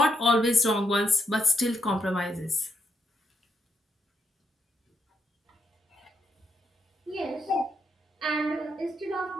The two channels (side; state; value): both; normal; correlation 0.79